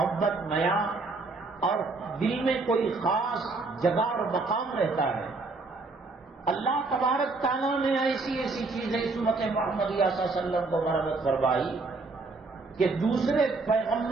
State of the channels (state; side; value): quieter; left; 3.7 dB